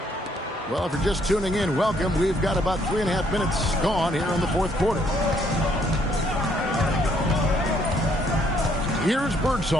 Well, if you're just tuning in, welcome. We've got about 3.5 minutes gone here in the fourth quarter. Here's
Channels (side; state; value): both; normal; correlation 0.68